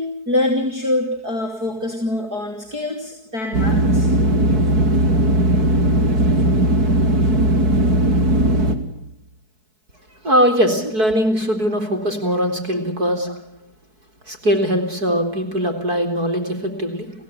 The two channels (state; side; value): late; left; 4.6 ms